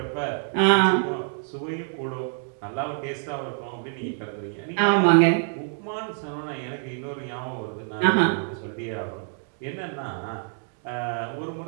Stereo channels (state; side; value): silent; left; 57 dB below the other